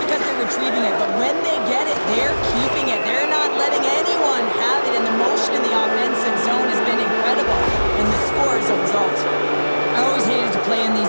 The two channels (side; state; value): both; inverted; correlation -1.00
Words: because they're retrieving it. But when they get it, they're keeping it. They're not letting anyone have it, and the motion in the offensive zone has been incredible, and the score is a result. I always hated to play in